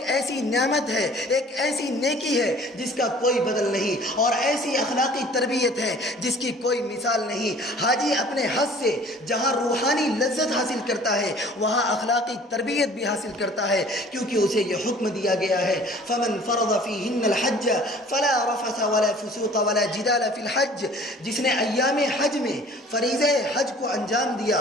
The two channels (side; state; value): both; normal; correlation 0.50